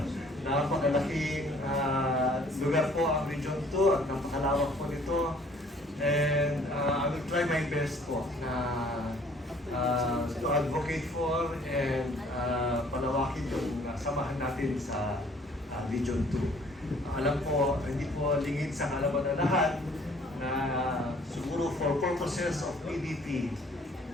Napakalaking lugar po ang Region 2 at napakalawak po nito. And I will try my best po na to advocate for and palawakin yung samahan natin sa Region 2. Alam po, hindi po lingid sa kalaman na lahat na siguro for purposes of PDP,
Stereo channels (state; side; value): normal; both; correlation 0.57